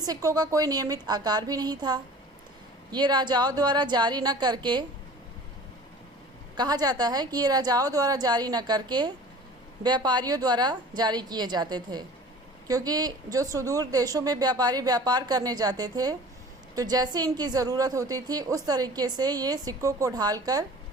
का कोई नियमित आकार भी नहीं था। ये राजाओं द्वारा जारी न करके कहा जाता है कि ये राजाओं द्वारा जारी न करके व्यापारियों द्वारा जारी किए जाते थे, क्योंकि जो सुदूर देशों में व्यापारी व्यापार करने जाते थे तो जैसे इनकी ज़रूरत होती थी उस तरीके से ये सिक्कों को ढालकर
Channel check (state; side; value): normal; both; correlation 0.43